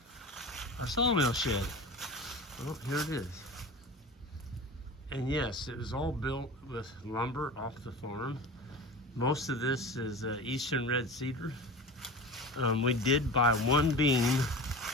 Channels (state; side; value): normal; both; correlation 0.32